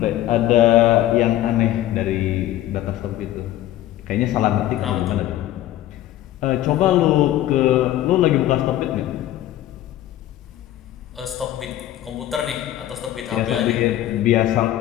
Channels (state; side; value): quieter; right; 13.6 dB